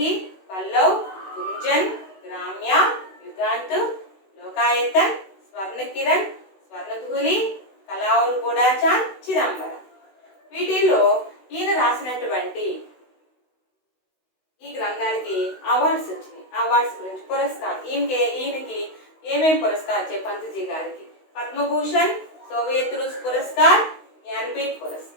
పల్లవ్, గుంజన్, గ్రామ్య, యుగాంత్, లోకాయతన్, స్వర్ణకిరణ్, స్వర్ణధూలి, కళా और బుడాచాన్, చిదంబరం. వీటిల్లో ఈయన రాసినటువంటి ఈ గ్రంథాలకి అవార్డ్స్ వచ్చినాయి. అవార్డ్స్ గురించి పురస్కారం ఈయనకి ఏమేమి పురస్కారం వచ్చాయి? పంత్జీ గారికి పద్మభూషణ్, సోవియత్ రూస్ పురస్కార్, జ్ఞానపీఠ్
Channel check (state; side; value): late; right; 16 ms